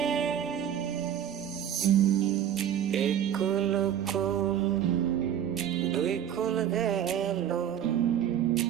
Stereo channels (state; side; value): quieter; left; 9.9 dB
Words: এক কুল কুল দুই কুল গেল,